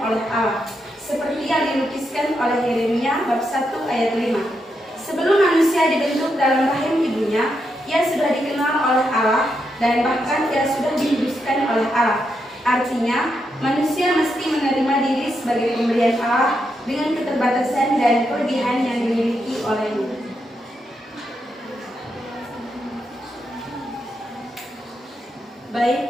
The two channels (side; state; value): both; normal; correlation 0.83